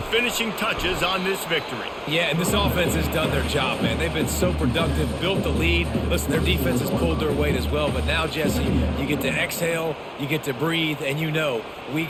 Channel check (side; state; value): both; identical; correlation 1.00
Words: touches on this victory. Yeah, and this offense has done their job, man. They've been so productive, built the lead. Listen, their defense has pulled their weight as well. But now, Jesse, you get to exhale, you get to breathe, and you know we